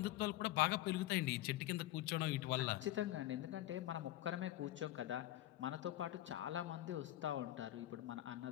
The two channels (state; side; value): quieter; right; 15.0 dB